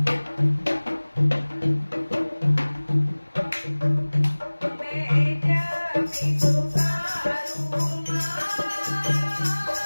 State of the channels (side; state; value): both; inverted; correlation -1.00